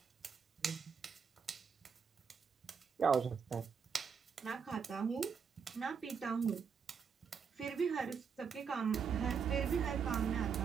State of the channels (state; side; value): quieter; left; 6.3 dB